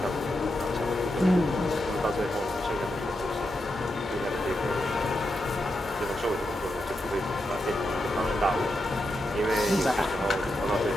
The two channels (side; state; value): both; normal; correlation 0.86